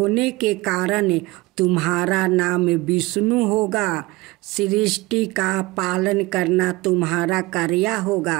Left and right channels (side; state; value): left; quieter; 21.5 dB